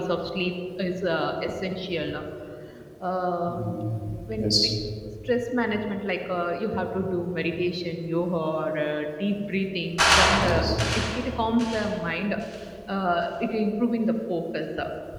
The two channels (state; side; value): identical; both; correlation 1.00